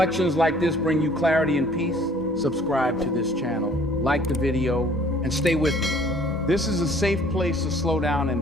like this bring you clarity and peace, subscribe to this channel, like the video, and stay with me. This is a safe place to slow down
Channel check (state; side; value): normal; both; correlation 0.56